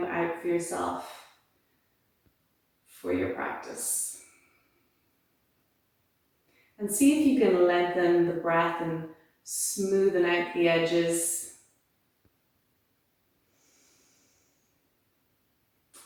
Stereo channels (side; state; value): both; identical; correlation 1.00